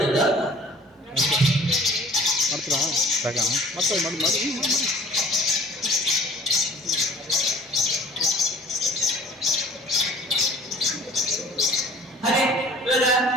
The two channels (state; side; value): normal; both; correlation 0.49